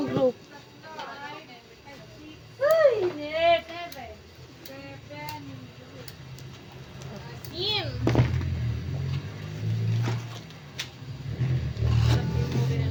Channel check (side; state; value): both; identical; correlation 1.00